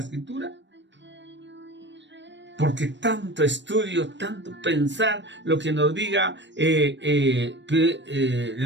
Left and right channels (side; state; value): left; late; 0.53 ms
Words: Porque tanto estudio, tanto pensar lo que nos diga el